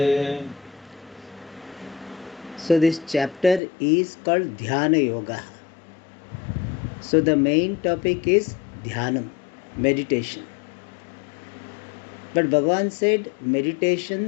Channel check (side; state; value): right; drops out; at 3.6 s